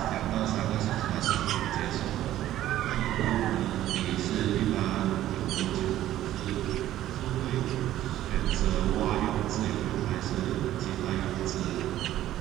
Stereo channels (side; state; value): left; quieter; 13.4 dB